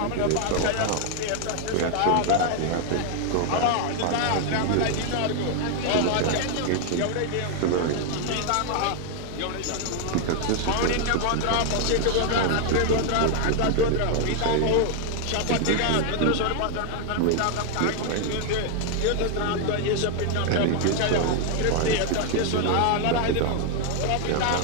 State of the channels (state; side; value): different; both; correlation 0.00